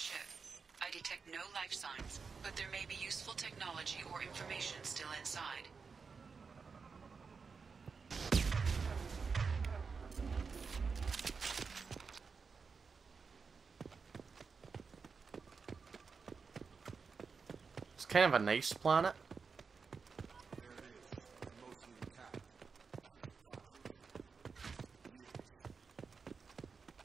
I detect no life signs, but there may be useful technology or information still inside. It's kind of a nice planet.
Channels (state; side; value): quieter; left; 5.2 dB